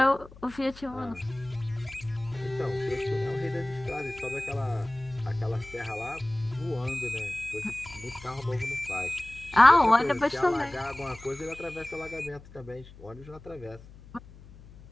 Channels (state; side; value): noise; left; hum, 20 dB below the sound